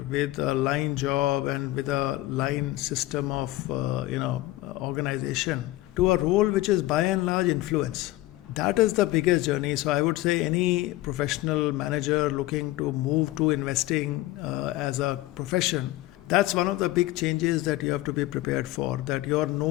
with a line job and with a line system of organization to a role which is by and large influence. That is the biggest journey. So I would say any professional manager looking to move to investing as a profession, that's one of the big changes that you have to be prepared for. That you're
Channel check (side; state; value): right; quieter; 17.4 dB